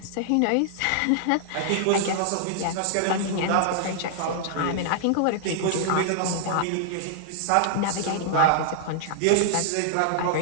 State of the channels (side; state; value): both; different; correlation -0.01